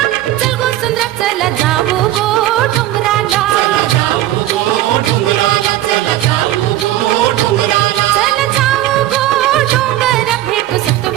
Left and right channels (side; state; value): left; quieter; 14.1 dB